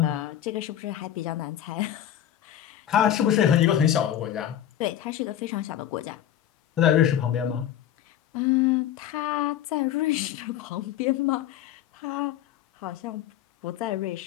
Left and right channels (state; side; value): quieter; right; 10.9 dB